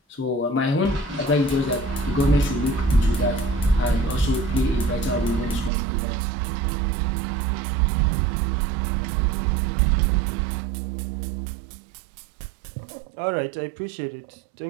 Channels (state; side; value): drops out; left; at 5.7 s